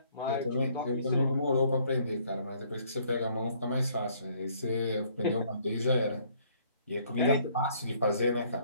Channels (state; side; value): inverted; both; correlation -0.63